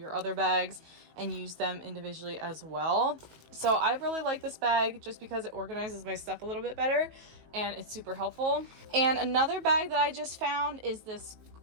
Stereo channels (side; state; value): left; late; 19 ms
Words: other bags and use them individually as well. So I really like this bag just because it organizes my stuff a little bit better and it's super helpful. And another bag that I just found is this